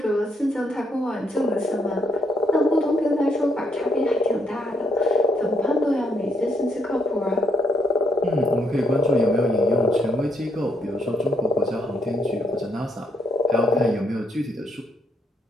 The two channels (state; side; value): normal; both; correlation 0.72